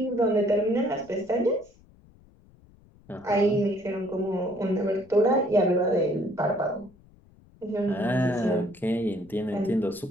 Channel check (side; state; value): left; noise; rumble, 27 dB below the sound